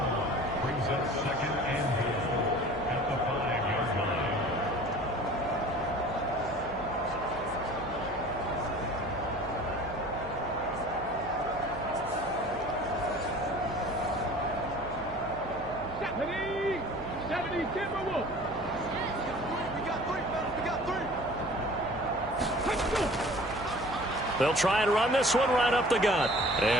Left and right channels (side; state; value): right; noise; hum, 15 dB below the sound